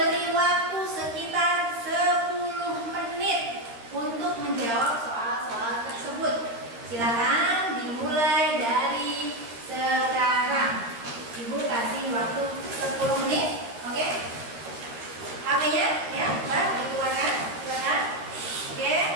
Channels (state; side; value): late; left; 13 ms